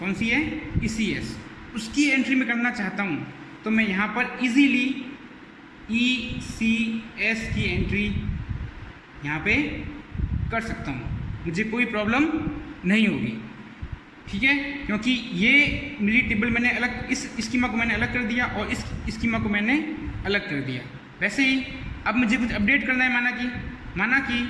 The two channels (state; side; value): identical; both; correlation 1.00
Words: सी है, ECS, उसकी एंट्री में करना चाहता हूँ, तो मैं यहाँ पर इजीली ECS की एंट्री यहाँ पे कर सकता हूँ, मुझे कोई प्रॉब्लम नहीं होगी, ठीक है, क्योंकि ये मेरी टेबल मैंने अलग, इस स्कीमा को मैंने अलग कर दिया और इस स्कीमा को मैंने अलग कर दिया। वैसे ही अब मुझे कुछ अपडेट करना है, माना कि